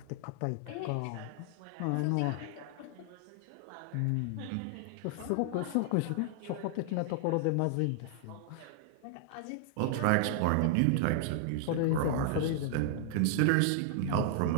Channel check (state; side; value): different; both; correlation 0.00